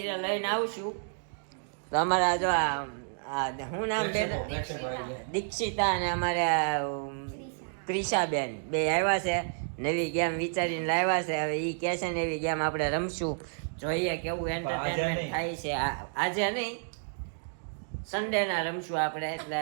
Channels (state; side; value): silent; left; digital silence